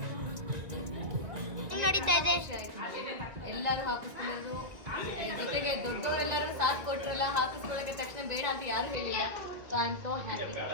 ನಡೀತಾ ಇದೆ. ಎಲ್ಲರೂ ಹಾಕಿಸ್ಕೊಳ್ಳೋದು, ಜೊತೆಗೆ ದೊಡ್ಡವರೆಲ್ಲರೂ ಸಾಥ್ ಕೊಟ್ರಲ್ಲ, ಹಾಕಿಸ್ಕೊಳ್ಳೋಕೆ ತಕ್ಷಣ ಬೇಡ ಅಂತ ಯಾರು ಹೇಳಿಲ್ಲ. So I am so happy.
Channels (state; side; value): late; left; 1.9 ms